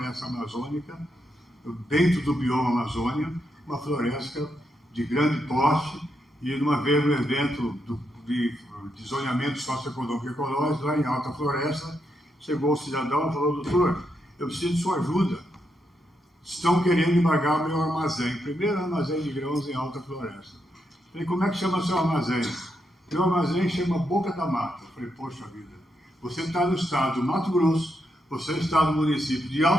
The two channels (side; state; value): both; normal; correlation 0.82